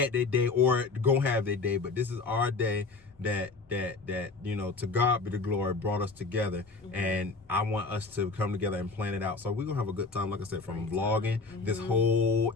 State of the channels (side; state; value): right; quieter; 4.0 dB